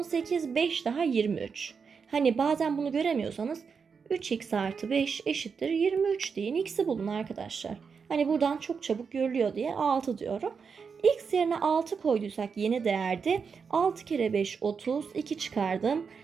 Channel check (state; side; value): quieter; left; 5.8 dB